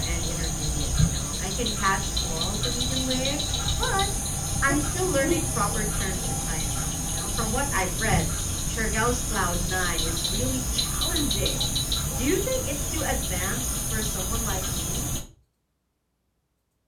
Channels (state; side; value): identical; both; correlation 1.00